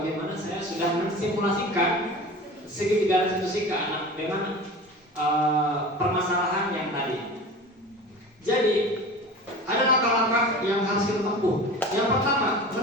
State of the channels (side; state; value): both; normal; correlation 0.35